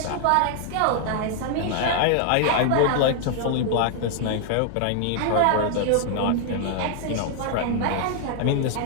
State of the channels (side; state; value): both; different; correlation 0.00